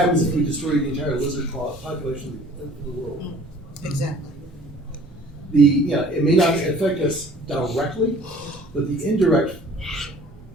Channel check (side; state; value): both; normal; correlation 0.51